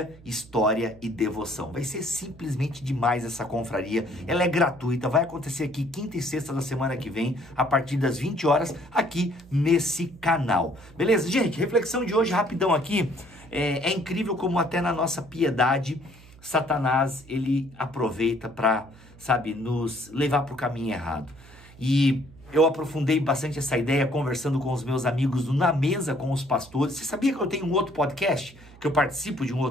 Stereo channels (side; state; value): right; noise; hum, 22 dB below the sound